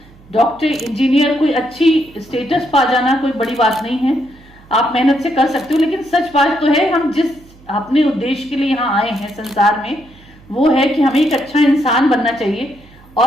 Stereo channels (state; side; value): noise; right; hum, 25 dB below the sound